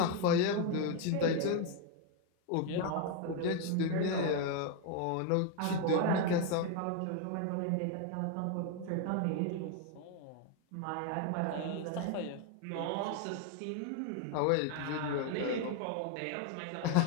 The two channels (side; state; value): both; different; correlation 0.01